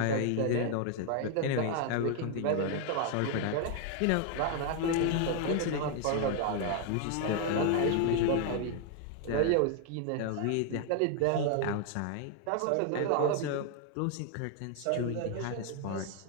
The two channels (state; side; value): different; both; correlation 0.00